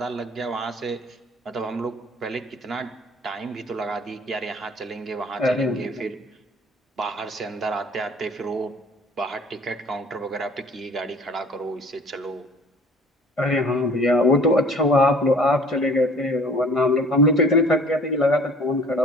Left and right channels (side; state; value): both; normal; correlation 0.50